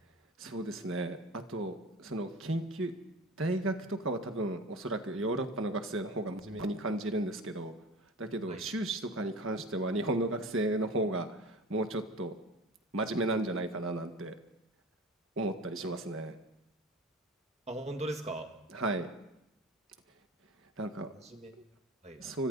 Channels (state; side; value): normal; both; correlation 0.36